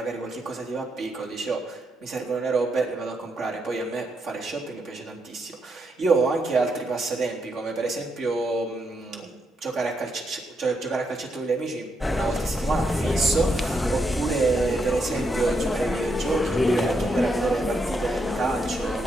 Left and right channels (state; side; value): normal; both; correlation 0.80